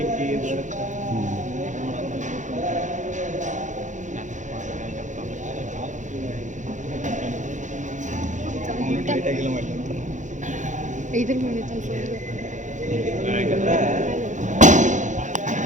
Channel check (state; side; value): late; left; 0.36 ms